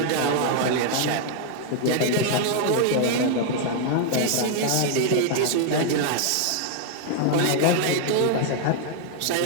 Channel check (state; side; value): different; both; correlation 0.00